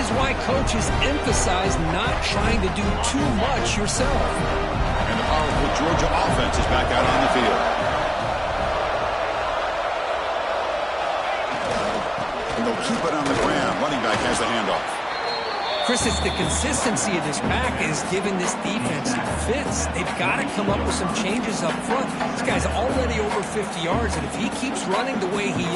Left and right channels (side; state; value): both; identical; correlation 1.00